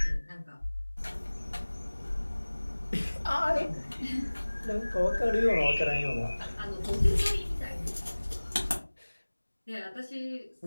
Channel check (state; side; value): inverted; both; correlation -1.00